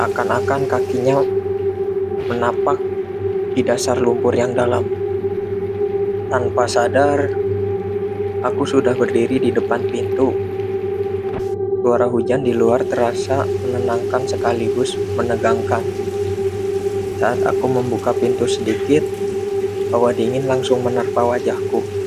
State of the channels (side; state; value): both; identical; correlation 1.00